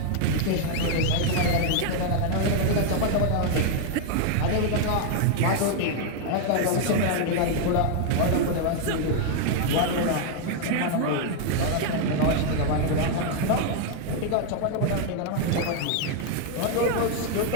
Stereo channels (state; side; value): different; both; correlation 0.00